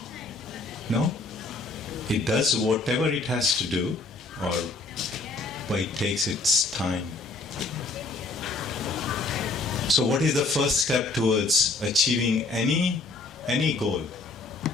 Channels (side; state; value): right; quieter; 3.5 dB